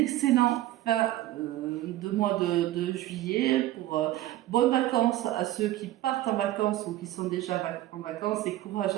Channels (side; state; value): left; quieter; 15.0 dB